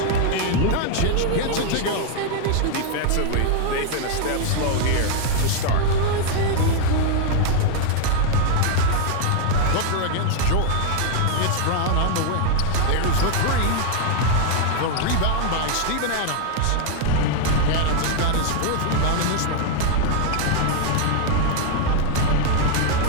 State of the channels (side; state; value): both; different; correlation 0.00